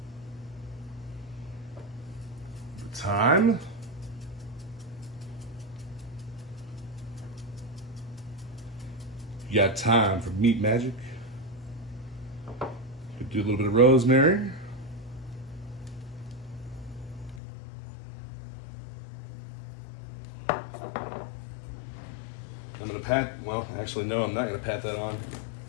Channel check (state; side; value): drops out; right; at 17.4 s